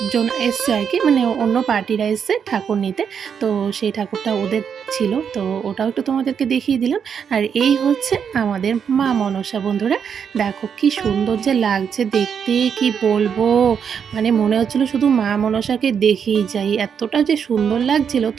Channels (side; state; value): left; quieter; 7.3 dB